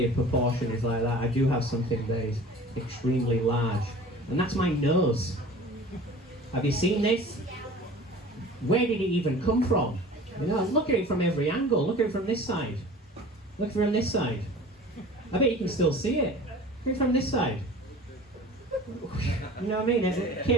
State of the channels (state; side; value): normal; both; correlation 0.43